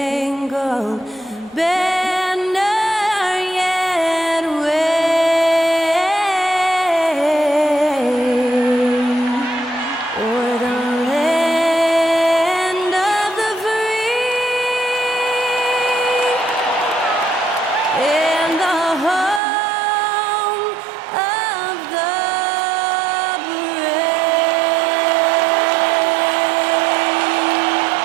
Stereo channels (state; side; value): drops out; left; at 19.4 s